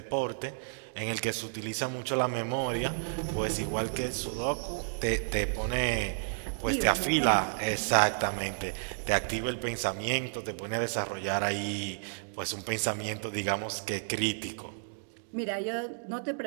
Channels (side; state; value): left; silent; digital silence